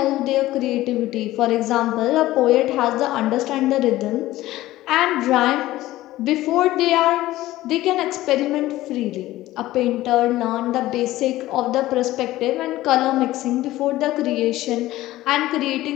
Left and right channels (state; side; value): quieter; right; 16.1 dB